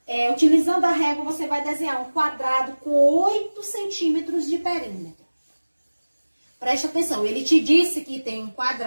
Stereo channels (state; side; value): inverted; both; correlation -1.00